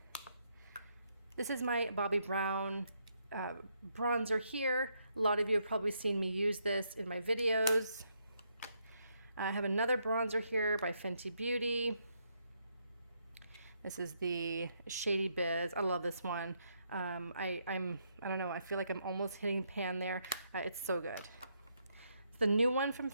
This is my Bobbi Brown bronzer here. A lot of you have probably seen me use this in my videos. I have another bronzer here by Fenty Beauty. This is the Shady Biz. I love this one. I don't know, I feel like I'm almost hitting pan there. It's so good. It's the new one from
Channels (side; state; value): both; inverted; correlation -0.76